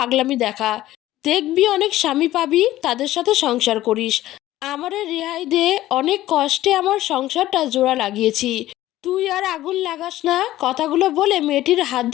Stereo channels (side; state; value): right; quieter; 15.0 dB